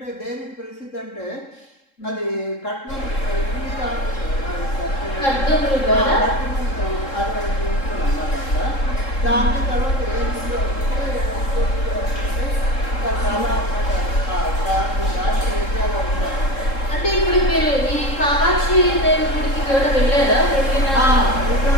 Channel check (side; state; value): right; late; 3.7 ms